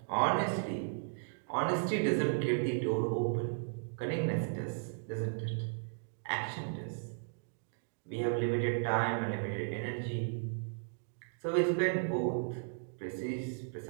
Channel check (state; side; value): silent; left; digital silence